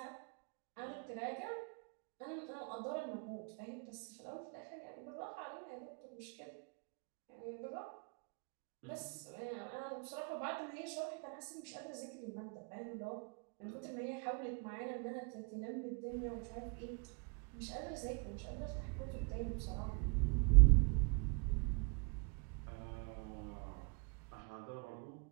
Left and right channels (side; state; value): left; quieter; 34.3 dB